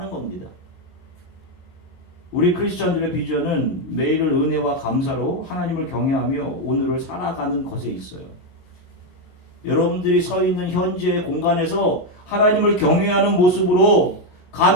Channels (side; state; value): right; late; 22 ms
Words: 겁니다. 우리 크리스천들의 비전은 매일을 은혜와 감사로 하나님을 경외하며 오늘을 살아가는 것에 있어요. 여러분들이 서 있는 현재의 공간에서 하나님을 경외하는 모습으로